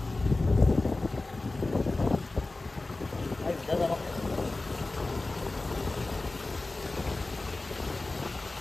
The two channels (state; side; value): quieter; right; 3.1 dB